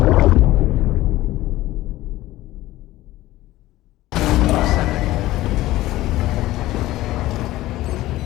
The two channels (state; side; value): quieter; right; 16.5 dB